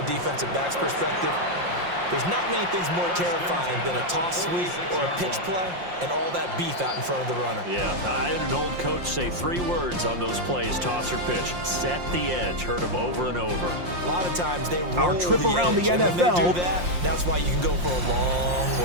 defensive back's perspective. There's not many things more terrifying than a toss sweep or a pitch play and all that beef out in front of the runner. Yeah, I had an old coach say 3 words on those plays, toss or pitch. Set the edge. Heard him over and over. A lot of times they roll Our trip the around edge, the and when NFL. they do that, that's why you can go for a long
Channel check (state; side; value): late; left; 5.7 ms